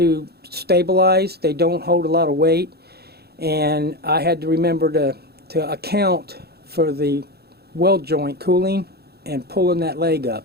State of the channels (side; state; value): left; late; 0.46 ms